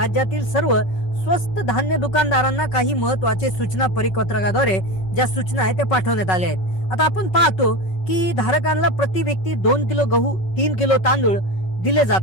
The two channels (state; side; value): late; right; 5.4 ms